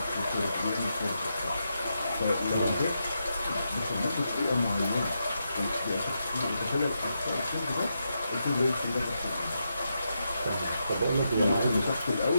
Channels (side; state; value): both; inverted; correlation -0.84